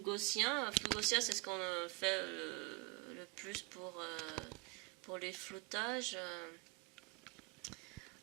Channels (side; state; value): left; quieter; 26.1 dB